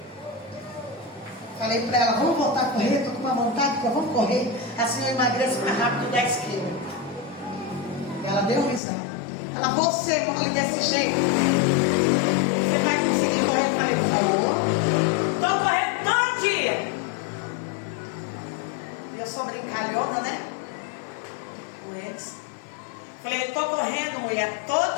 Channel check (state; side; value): drops out; right; at 8.8 s